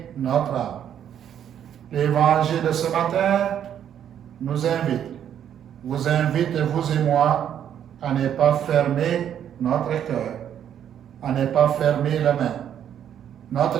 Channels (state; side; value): quieter; left; 9.6 dB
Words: notre âme. L'évangile de ce matin nous vous invite, vous et moi, à ne pas fermer notre cœur, à ne pas fermer les mains.